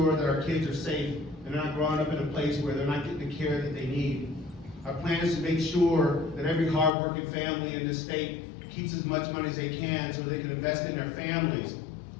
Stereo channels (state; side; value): drops out; right; at 6.9 s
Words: that our kids are safe and they're not growing up in a place where they're not getting the care that they need. Our plan is to make sure that every hardworking family in this state keeps as much money as they can so they can invest in their families.